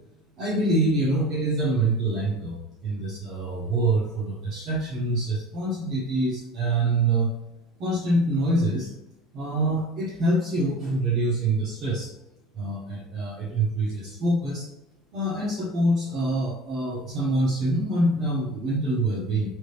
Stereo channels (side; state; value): both; normal; correlation 0.39